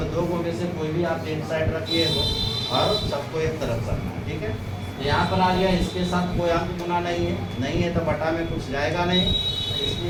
2 को में से कोई भी आप एक साइड रखिए तो, और सबको एक तरफ करना है, ठीक है। तो यहाँ पर आ गया, इसके साथ कोई अंक गुना नहीं है तो बटा में कुछ जाएगा नहीं,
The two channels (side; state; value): both; identical; correlation 1.00